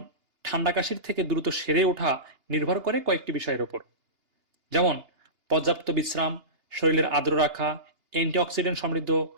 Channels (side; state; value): left; late; 2.8 ms